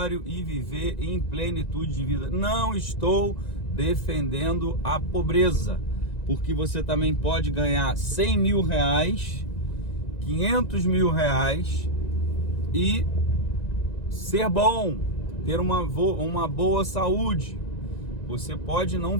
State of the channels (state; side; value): late; right; 1.9 ms